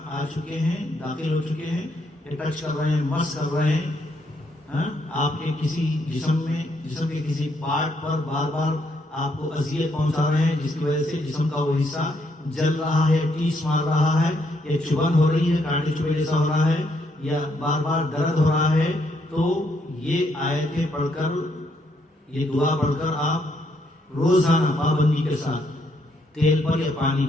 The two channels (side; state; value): both; normal; correlation 0.74